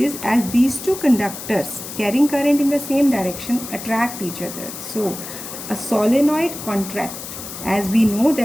as these two conductors carrying current in the same direction attract each other, so a solenoid contract. As we know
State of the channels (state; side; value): noise; left; hiss, 10 dB below the sound